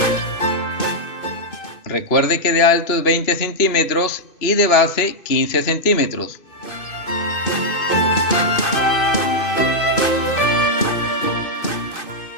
Recuerde que de alto es 20 centímetros y de base 15 centímetros.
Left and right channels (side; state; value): right; late; 2.5 ms